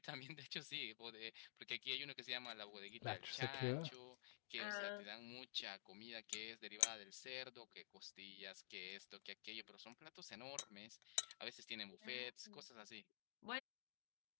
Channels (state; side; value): silent; right; digital silence